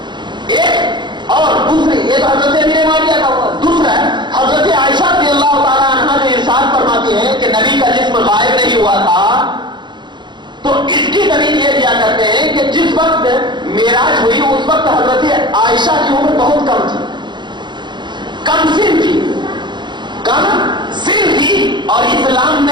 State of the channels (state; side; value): late; left; 0.22 ms